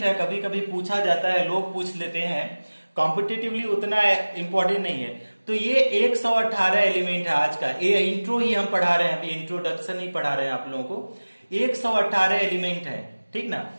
है, कभी कभी पूछा जाता है, लोग पूछ लेते हैं, कॉम्पिटिटिवली उतना इंपॉर्टेंट नहीं है। तो ये 118 एलिमेंट है आज का, ये इंट्रो ही हम पढ़ा रहे हैं, अभी इंट्रोडक्शन ही पढ़ा रहे हैं आप लोगों को। 118 एलिमेंट है, ठीक ना।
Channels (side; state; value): both; inverted; correlation -1.00